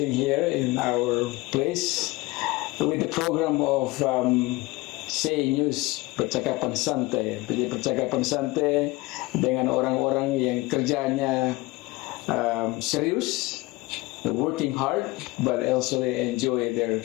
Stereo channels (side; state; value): right; quieter; 21.6 dB